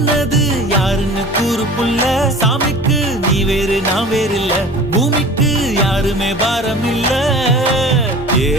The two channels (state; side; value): normal; both; correlation 0.41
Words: யாருன்னு கூறு புள்ள சாமிக்கு நீ வேறு நான் வேறு இல்ல பூமிக்கு யாருமே பாரம் இல்ல